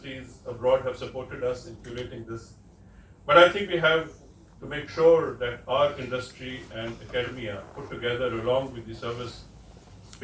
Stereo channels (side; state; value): both; identical; correlation 1.00